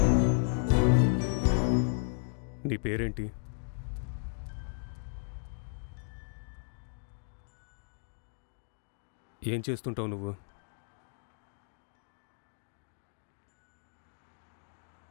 నీ పేరేంటి? ఏం చేస్తుంటావు నువ్వు?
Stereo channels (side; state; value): right; silent; digital silence